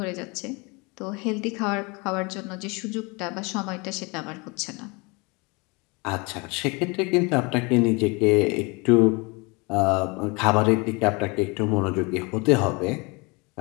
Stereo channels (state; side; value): quieter; right; 28.2 dB